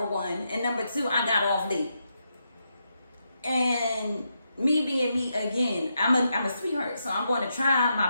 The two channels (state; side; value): inverted; both; correlation -0.83